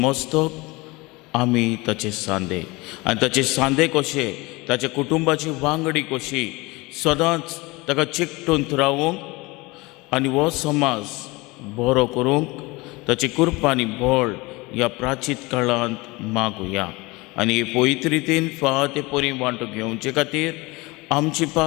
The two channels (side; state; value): right; quieter; 23.6 dB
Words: आमी ताचे सांदे आनी ताचे सांदे कशे ताच्या कुटुंबाची वांगडी कशी सदांच ताका चिकटून रावूंक आनी हो समाज बरो करूंक ताची कृपा आनी बळ ह्या प्राचीत काळांत मागुया. आनी हे पवित्र रितीन फाते परी वांटो घेवचे खातीर आमची